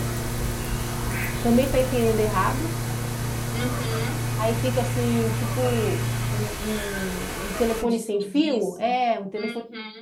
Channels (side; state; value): both; identical; correlation 1.00